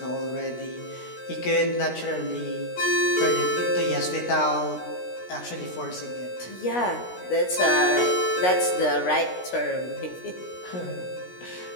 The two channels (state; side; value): late; right; 16 ms